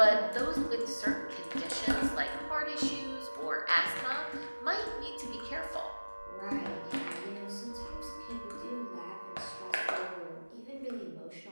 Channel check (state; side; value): inverted; both; correlation -1.00